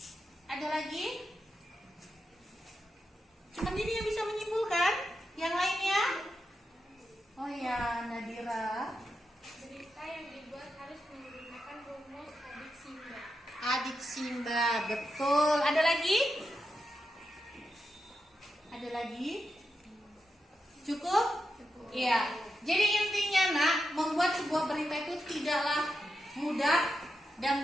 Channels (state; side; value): normal; both; correlation 0.87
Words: Ada lagi? Cuma ini yang bisa menyimpulkan. Yang lainnya? Oh ya, Nadira. Berita yang dibuat harus menggunakan rumus adik Simba. Adik Simba, betul. Ada lagi? Ada lagi? Cukup? Iya. Jadi intinya nak, membuat sebuah berita itu tidaklah mudah